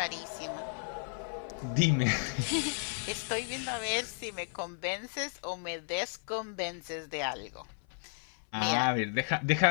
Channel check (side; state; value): right; silent; 55 dB below the other